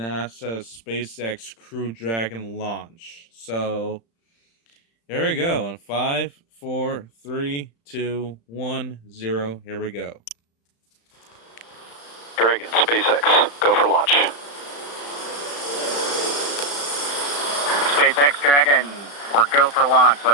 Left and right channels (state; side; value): late; right; 35 ms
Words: SpaceX Crew Dragon launch. So here we go. In 5, 4, 3, 2, 1, 0. Here we go. Dragon, SpaceX, go for launch. SpaceX Dragon, we're go for launch.